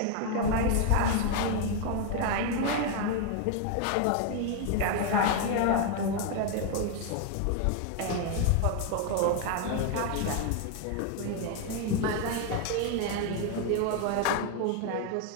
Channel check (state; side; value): different; both; correlation 0.01